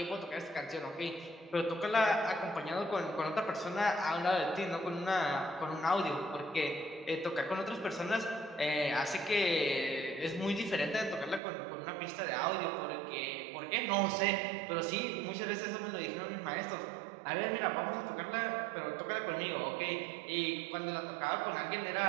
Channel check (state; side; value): drops out; left; at 11.4 s